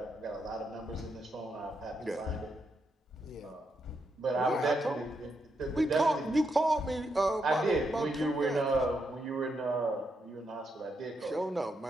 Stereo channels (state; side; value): normal; both; correlation 0.81